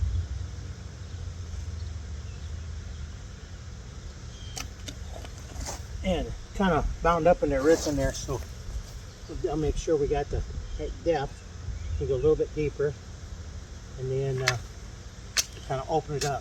And kind of bound up in their roots in there, so I'll make sure we got the right depth. We go a little bit deeper, and then kind of open it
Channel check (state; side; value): identical; both; correlation 1.00